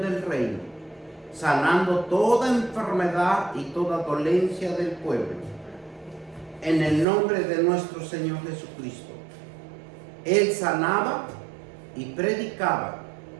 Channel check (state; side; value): drops out; left; at 7.1 s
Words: reino, sanando toda enfermedad y toda dolencia del pueblo, en el nombre de nuestro Señor Jesucristo. Él sanaba y predicaba